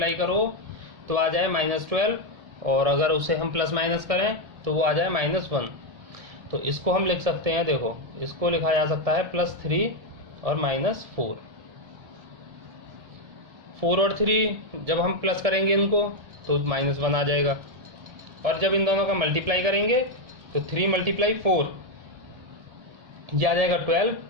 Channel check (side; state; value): left; late; 1.7 ms